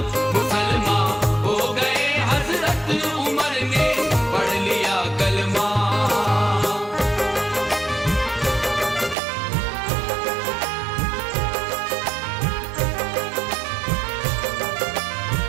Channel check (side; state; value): left; drops out; at 9.2 s